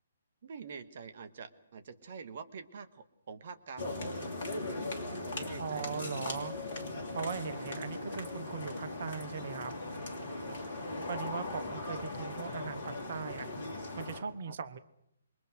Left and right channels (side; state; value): both; inverted; correlation -0.65